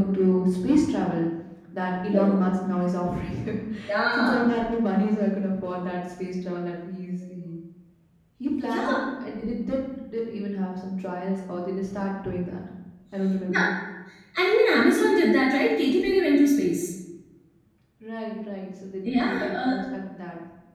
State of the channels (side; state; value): both; identical; correlation 1.00